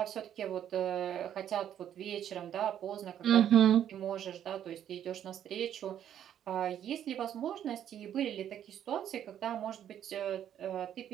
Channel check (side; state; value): left; quieter; 10.2 dB